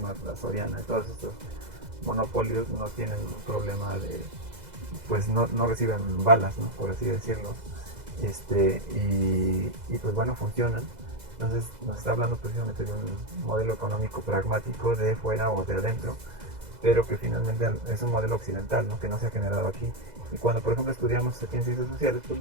la Soriana y todos estos monopolios no tienen un problema pues no reciben balas, ¿no? Por así decirlo, y pues bueno, funcionan. Entonces nos está hablando precisamente de un modelo económico pragmático de fuera o de adentro, pero que finalmente es un modelo occidental, ¿no? Que no se ha generado aquí. Y cuando por ejemplo estudiamos aquí en ciencias sociales, pues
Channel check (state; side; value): late; left; 2.0 ms